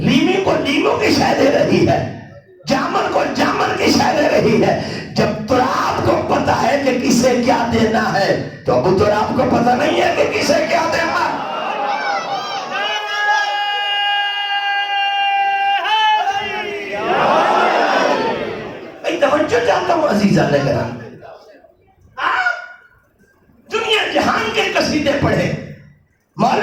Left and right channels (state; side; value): identical; both; correlation 1.00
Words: کو لیمو کی شے دے رہی ہے، جامن کو جامن کی شے دے رہی ہے. جب تراب کو پتا ہے کہ کسے کیا دینا ہے تو ابو تراب کو پتا نہیں ہے کہ کسے کیا دینا ہے. توجہ چاہتا ہوں عزیزان کرام. آپ دنیا جہان کے قصیدے پڑھیں،